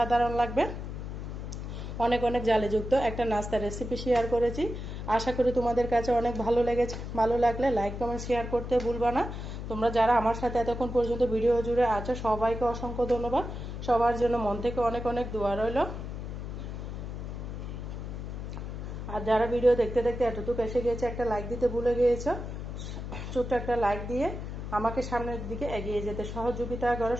লাগবে। অনেক অনেক জালিযুক্ত একটা নাস্তার রেসিপি শেয়ার করেছি, আশা করি তোমাদের কাছে অনেক ভালো লেগেছে। ভালো লাগলে লাইক কমেন্ট শেয়ার করতে ভুলবা না। তোমরা যারা আমার সাথে এতক্ষণ পর্যন্ত ভিডিও জুড়ে আছো সবাইকে অসংখ্য ধন্যবাদ। সবার জন্য মন থেকে অনেক অনেক দোয়া রইল। আর যারা ভিডিও দেখতে দেখতে এতটুকু এসে গিয়েছে একটা লাইক দিতে ভুলে গিয়েছো, ছোট্ট একটা লাইক দিয়ে আমাকে সামনের দিকে এগিয়ে যেতে সহযোগিতা করে।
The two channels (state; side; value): noise; left; hum, 7 dB below the sound